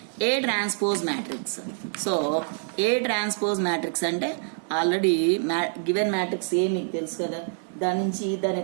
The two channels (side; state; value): left; silent; digital silence